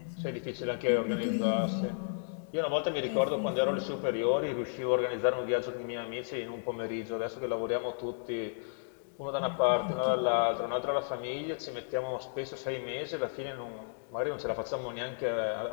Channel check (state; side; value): silent; right; digital silence